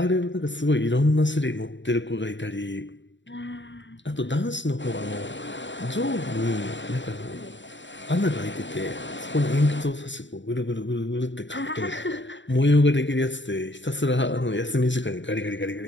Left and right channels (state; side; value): late; right; 0.54 ms